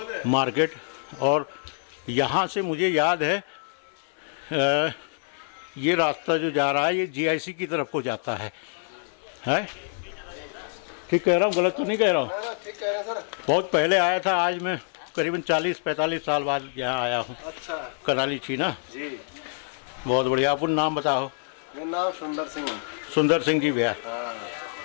मार्केट। और यहाँ से मुझे याद है ये रास्ता जो जा रहा है ये GIC की तरफ को जाता है। ठीक कह रहा हूँ? गलत तो नहीं कह रहा हूँ? ठीक कह रहे हैं सर। बहुत पहले आया था, आज मैं करीबन 40-45 साल बाद यहाँ आया हूँ। अच्छा कनाली छीना जी। बहुत बढ़िया। अपन नाम बताओ? मेरा नाम सुंदर सिंह। सुंदर सिंह जी भैया,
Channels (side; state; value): right; silent; 61 dB below the other